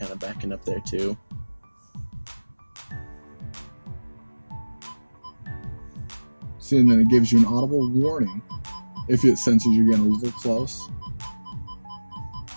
of backing up there too. See, and then it gives you an audible warning if it senses you're getting a little close.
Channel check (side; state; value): both; inverted; correlation -1.00